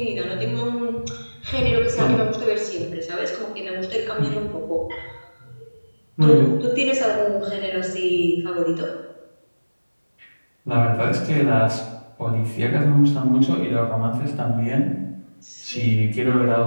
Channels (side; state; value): both; inverted; correlation -1.00